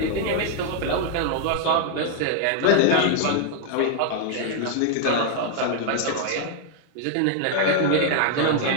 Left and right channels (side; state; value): both; different; correlation 0.00